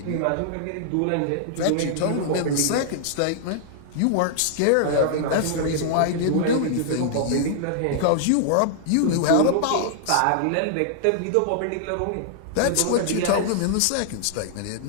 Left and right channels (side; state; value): both; different; correlation -0.01